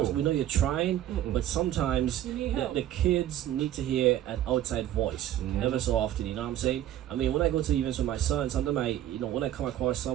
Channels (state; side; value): quieter; left; 12.3 dB